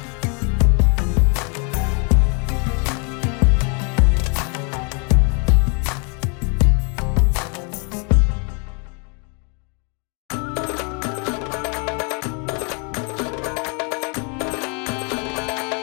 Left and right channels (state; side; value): quieter; right; 36.3 dB